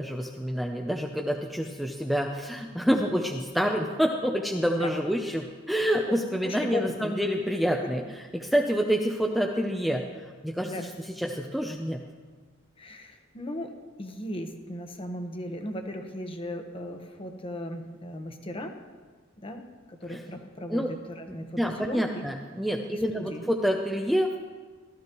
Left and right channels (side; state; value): both; normal; correlation 0.85